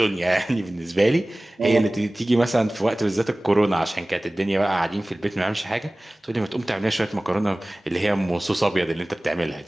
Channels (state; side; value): normal; both; correlation 0.98